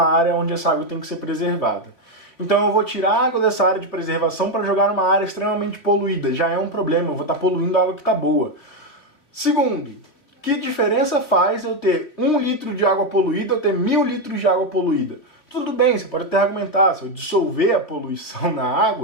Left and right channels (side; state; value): right; late; 3.8 ms